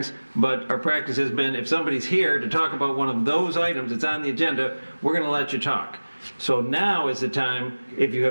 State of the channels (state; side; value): inverted; both; correlation -1.00